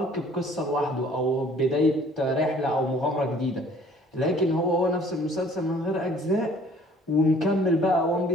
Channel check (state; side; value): normal; both; correlation 0.55